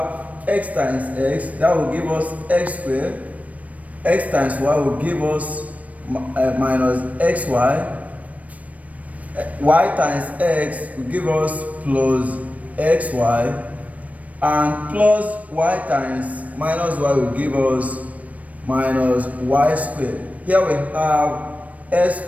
x times x, that will give us x squared. X times y will give us minus xy. Y times x will give us plus xy. And plus y times minus y will give us minus y squared. Here we have x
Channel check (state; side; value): late; left; 0.068 ms